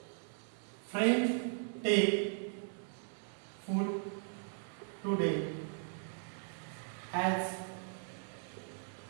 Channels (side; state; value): left; silent; 52 dB below the other